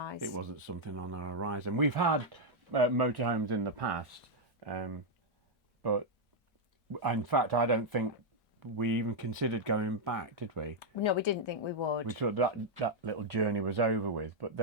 it wasn't something on our horizon. We've had motorhomes in the past, but in fact, I don't think we even considered going back, did we? No, we didn't think we would. We thought that little journey was over with, but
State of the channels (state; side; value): normal; both; correlation -0.01